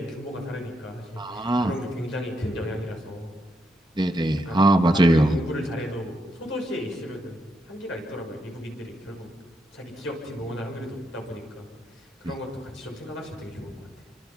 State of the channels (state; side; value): normal; both; correlation 0.80